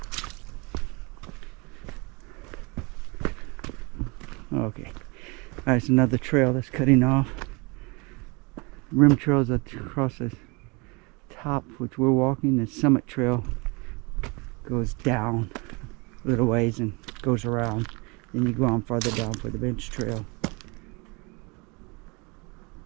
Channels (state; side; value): quieter; left; 28.7 dB